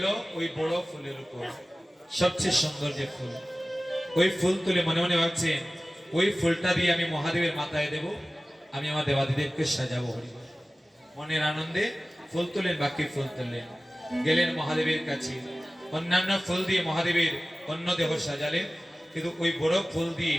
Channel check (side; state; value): both; normal; correlation 0.97